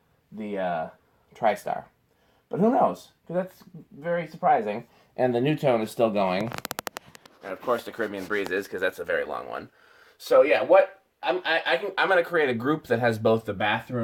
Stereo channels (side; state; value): both; identical; correlation 1.00